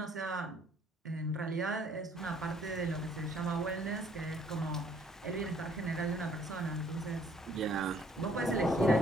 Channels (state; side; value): normal; both; correlation 0.62